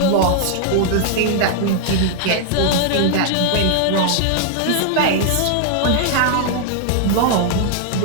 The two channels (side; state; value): both; different; correlation -0.01